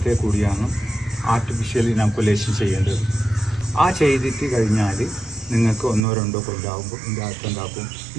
കൂടിയാണ് ആർട്ടിഫിഷ്യൽ ഇനാക്കുലേഷൻ ചെയ്യേണ്ടത്. ആ ചെയ്തിട്ട് കഴിഞ്ഞാൽ നിങ്ങൾക്ക് 1-2 കൊല്ലാകുമ്പോൾ ഇതിൻ്റെ അകത്ത് ഉണ്ടാക്കും.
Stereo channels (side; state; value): left; drops out; at 6.1 s